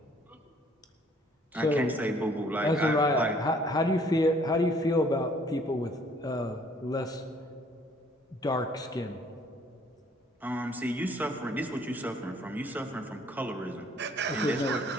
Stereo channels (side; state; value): both; normal; correlation 0.60